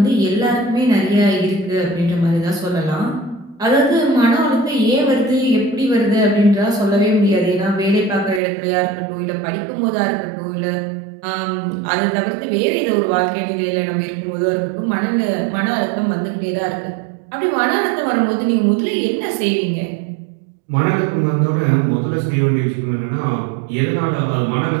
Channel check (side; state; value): left; drops out; at 8.4 s